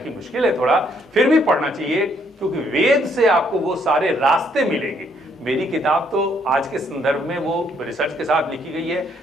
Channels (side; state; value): both; normal; correlation 0.69